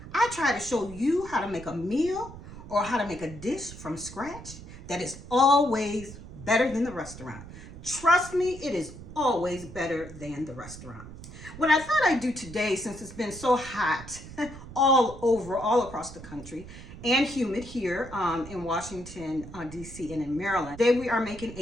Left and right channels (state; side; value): noise; right; rumble, 14 dB below the sound